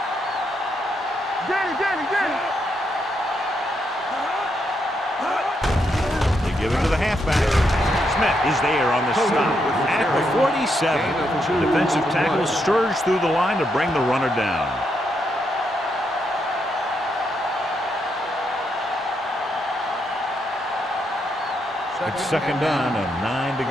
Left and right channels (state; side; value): normal; both; correlation 0.79